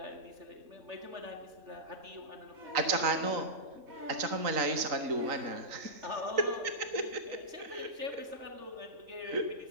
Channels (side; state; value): left; late; 3.9 ms